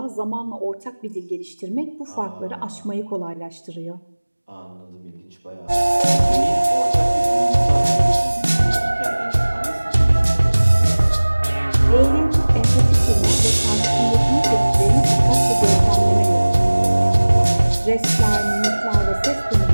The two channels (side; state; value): both; inverted; correlation -1.00